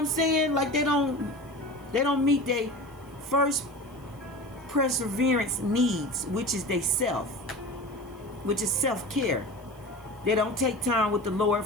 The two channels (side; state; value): left; noise; hiss, 30 dB below the sound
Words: saying? Like, they don't meet their first perseverance needs, which is they self, which is self-care. They don't take time with the Lord,